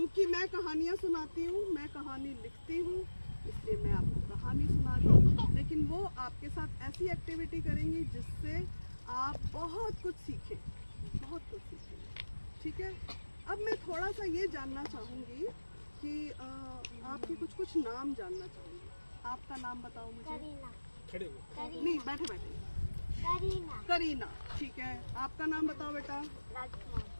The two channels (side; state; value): both; inverted; correlation -1.00